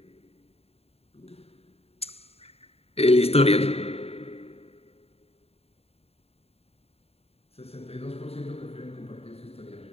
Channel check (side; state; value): right; late; 0.29 ms